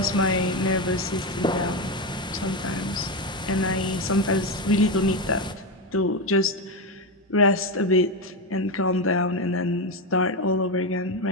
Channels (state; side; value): normal; both; correlation 0.12